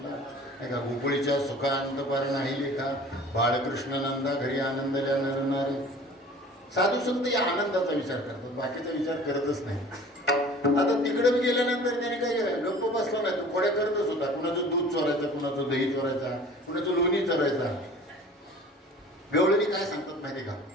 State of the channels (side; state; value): both; normal; correlation 0.45